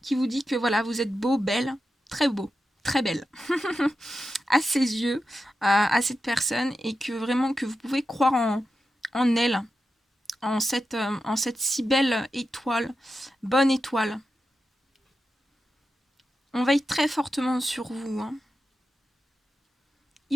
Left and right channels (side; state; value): both; normal; correlation 0.90